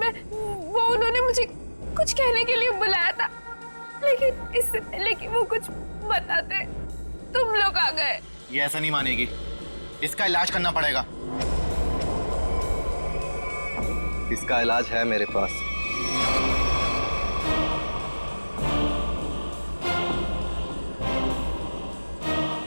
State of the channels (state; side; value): inverted; both; correlation -1.00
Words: उन्होंने मुझे कुछ कहने के लिए बुलाया था, लेकिन इससे पहले कि वो कुछ बताते तुम लोग आ गए। ये ऐसा नहीं मानेगी, इसका इलाज करना पड़ेगा। इसका इलाज है मेरे पास।